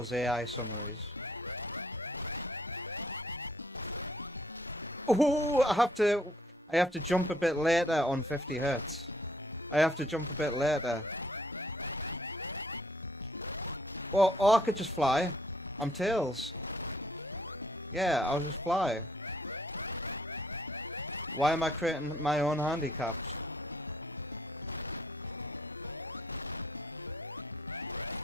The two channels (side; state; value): both; normal; correlation 0.64